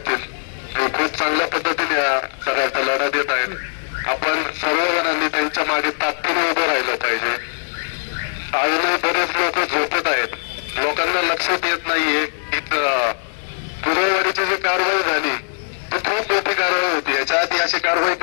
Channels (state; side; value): silent; right; 65 dB below the other